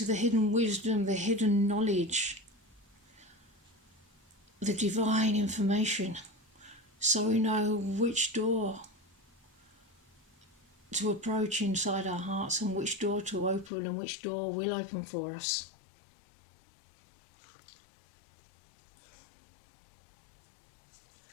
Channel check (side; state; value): right; drops out; at 13.7 s